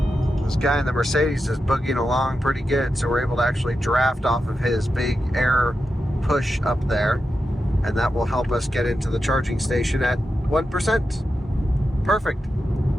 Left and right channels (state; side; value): normal; both; correlation 0.89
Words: Guy in the Mercedes is boogieing along pretty good, so we're able to actually draft off of his big air push up there, and that will help us get into the charging station at 1%. Perfect.